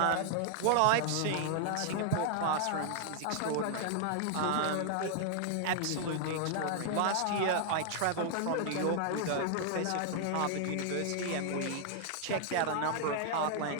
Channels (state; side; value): different; both; correlation 0.00